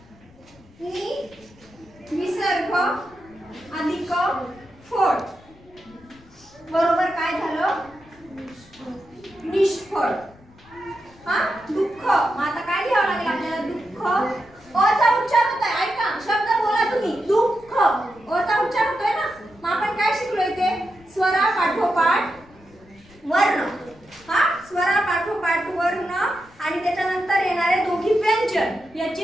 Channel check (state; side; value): noise; left; rumble, 26 dB below the sound